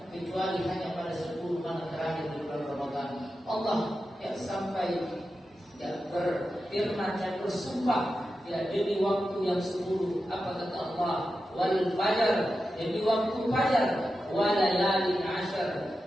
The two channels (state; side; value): normal; both; correlation 0.91